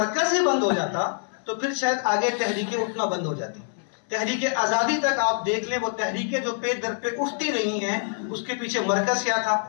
ہی بند ہو جاتا تو پھر شاید آگے تحریکیں اٹھنا بند ہو جاتی. تحریک آزادی تک آپ دیکھ لیں، وہ تحریکیں جو پہ در پہ اٹھتی رہی ہیں، اس کے پیچھے مرکز کیا تھا؟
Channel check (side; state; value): right; silent; 61 dB below the other